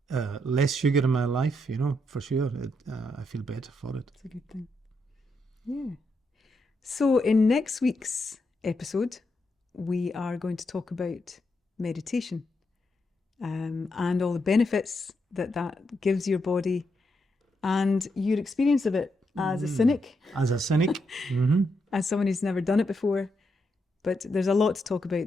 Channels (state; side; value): normal; both; correlation 0.81